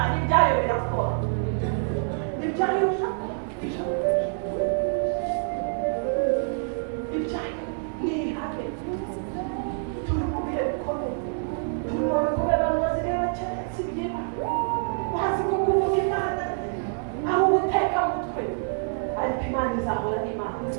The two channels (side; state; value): left; silent; digital silence